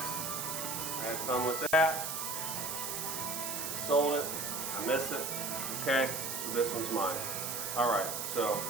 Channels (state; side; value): noise; right; hiss, 3 dB below the sound